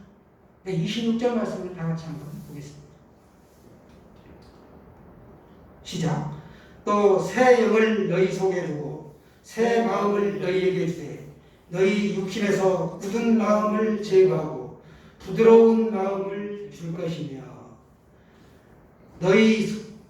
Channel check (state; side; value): identical; both; correlation 1.00